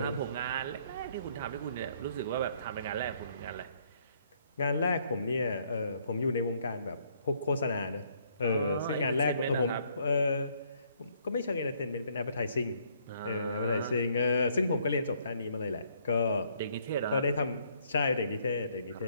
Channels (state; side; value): inverted; both; correlation -0.67